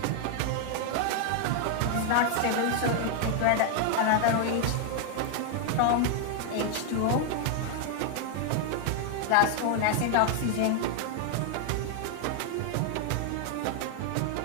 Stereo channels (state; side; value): different; both; correlation 0.00